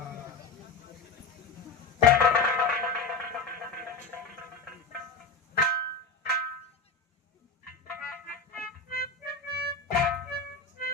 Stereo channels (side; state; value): right; quieter; 4.3 dB